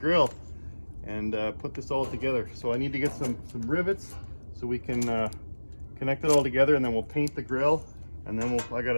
and put this all together. So I need to get some rivets so we can connect it all together, and then we'll paint the grill, and then I got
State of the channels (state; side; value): inverted; both; correlation -1.00